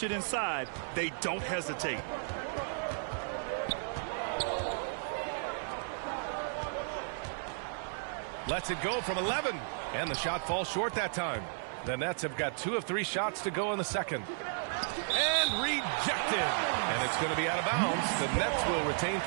it inside, they don't hesitate. Lets it go from 11. And the shot falls short that time. The Nets have got 2 of 3 shots to go in the second. And rejected. And it's going to be out of bounds. The Nets will retain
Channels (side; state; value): left; silent; 55 dB below the other